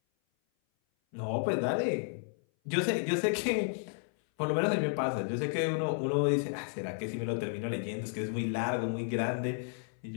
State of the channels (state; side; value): silent; right; 56 dB below the other